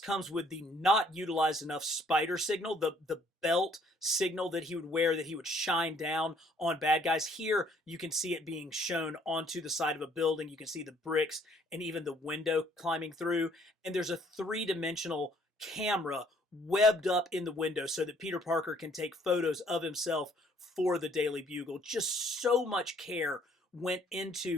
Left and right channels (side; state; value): both; normal; correlation 0.62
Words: with the not utilized enough spider signal, the belt signal that he would wear, that he would shine down on bad guys. Here, you can see it being shown onto the side of a building. You can see the bricks and even the window climbing through. And there's a three-dimensional camera webbed up in the window so that Peter Parker can take photos of himself for the Daily Bugle. Just so much care went